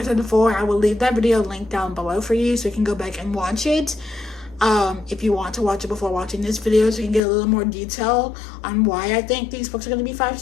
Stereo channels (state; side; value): drops out; right; at 7.2 s